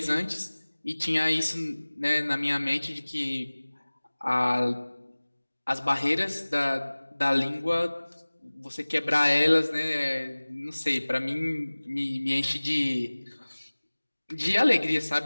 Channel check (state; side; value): inverted; both; correlation -1.00